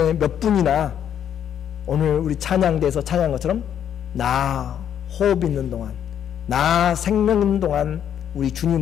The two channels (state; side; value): quieter; right; 9.4 dB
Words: 몇 분이나 오늘 우리 찬양대에서 찬양한 것처럼 나 호흡 있는 동안, 나 생명 있는 동안 우리